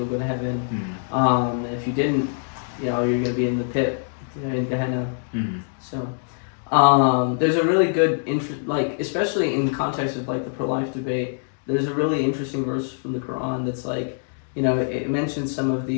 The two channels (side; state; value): right; silent; digital silence